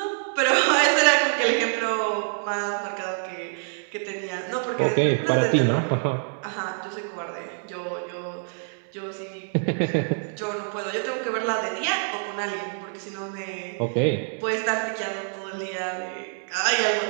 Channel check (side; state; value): left; silent; 61 dB below the other